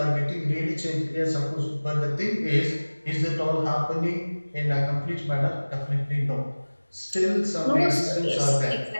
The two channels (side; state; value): both; inverted; correlation -1.00